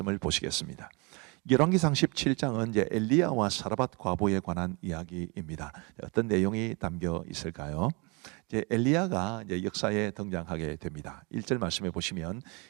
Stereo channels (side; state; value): left; quieter; 30.2 dB